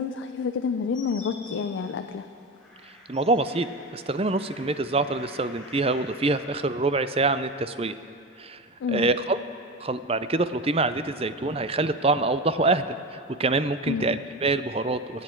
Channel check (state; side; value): normal; both; correlation 0.23